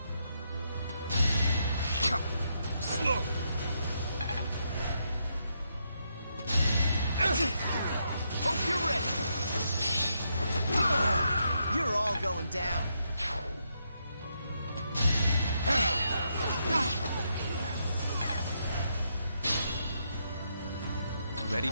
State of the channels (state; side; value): inverted; both; correlation -0.79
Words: slow! Hope you're ready! You're all going down. Ready